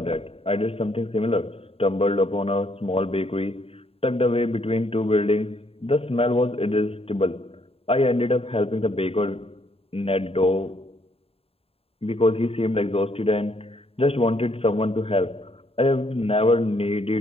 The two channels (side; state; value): right; late; 0.28 ms